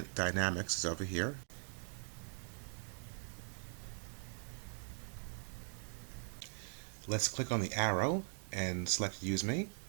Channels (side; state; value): left; silent; 50 dB below the other